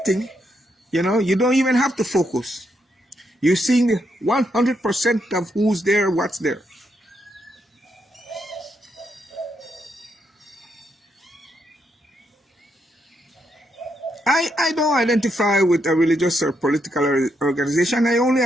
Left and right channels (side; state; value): both; normal; correlation 0.79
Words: you don't even have to focus. You're seeing 100% of who's there, what's there. I don't identify with a religious or political organization. I only